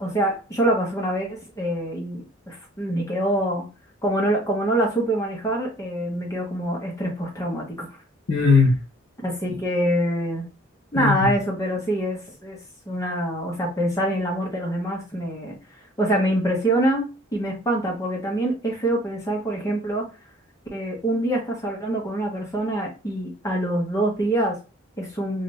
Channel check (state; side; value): normal; both; correlation 0.55